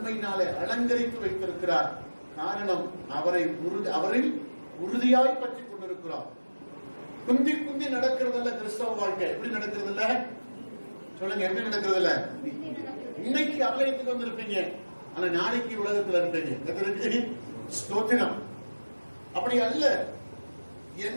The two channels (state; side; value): inverted; both; correlation -1.00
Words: அலங்கரித்து வைத்திருக்கிறார். காரணம் அவரில் உறுதியாய் பற்றி கொண்டிருக்கிறார். குந்தி குந்தி நடக்கிறதில்ல கிறிஸ்தவ வாழ்க்கை. எப்படி நடக்கிறது இல்ல சொல்லுங்க, எப்படி நடக்கிறது இல்ல? இன்னைக்கு ஆலயத்துக்கு வந்திருப்பீங்க, ஆனா நாளைக்கு உலகத்துல இருப்பீங்க. ஸ்தோத்திரம். அப்படி அல்ல.